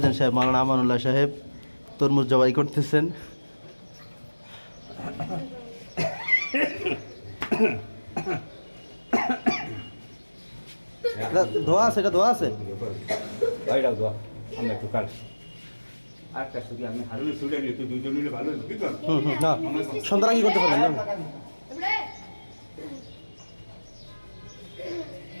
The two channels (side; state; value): both; inverted; correlation -1.00